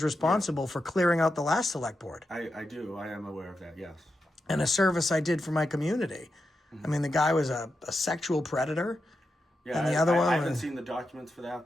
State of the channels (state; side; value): normal; both; correlation 0.88